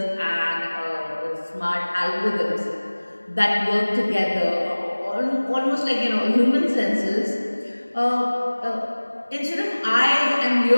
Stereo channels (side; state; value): both; inverted; correlation -1.00